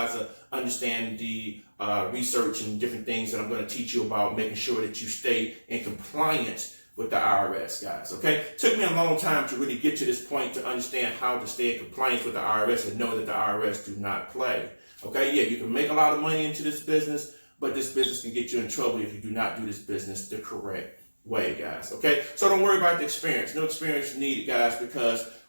understand the research and different things that I'm going to teach you about, making sure that you stay in compliance with the IRS, guys. Okay, took me a long time to really get to this point to understand how to stay in compliance with the IRS and know that the IRS do not play. Okay, yeah, you can make a lot of money into this business, but this business can get you in trouble if you do not do this business the correct way, guys. Okay, so don't worry about the experience. No experience needed, guys, because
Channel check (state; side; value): inverted; both; correlation -1.00